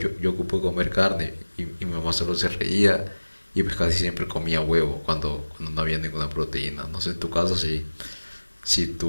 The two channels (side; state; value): both; inverted; correlation -1.00